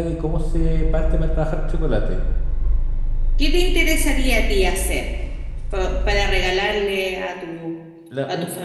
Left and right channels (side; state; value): both; identical; correlation 1.00